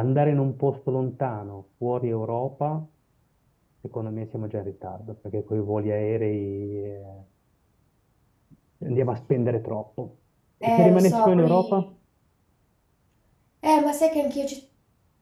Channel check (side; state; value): both; identical; correlation 1.00